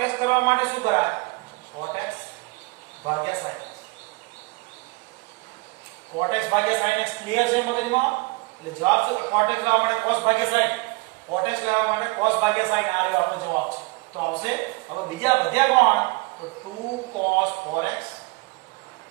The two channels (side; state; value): left; quieter; 26.3 dB